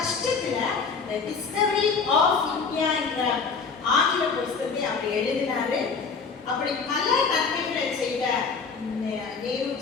the discovery of India என்ற ஆங்கில புத்தகத்தை அவர் எழுதினாரு. அப்படி பல நன்மைகளை செய்த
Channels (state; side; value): quieter; right; 5.2 dB